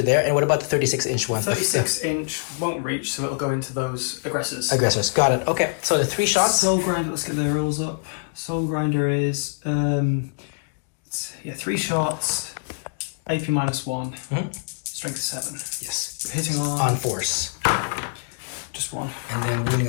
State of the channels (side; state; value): right; silent; digital silence